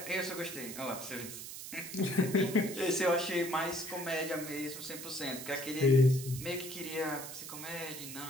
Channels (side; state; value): right; noise; hiss, 10 dB below the sound